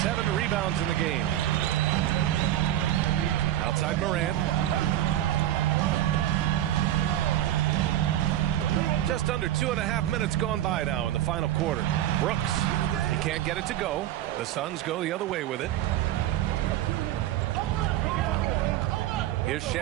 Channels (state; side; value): quieter; left; 12.9 dB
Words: 7 rebounds in the game. Outside Morant. Just under 2.5 minutes gone by now in the final quarter. Brooks, he can't get it to go. The Suns go the other way with it. Here's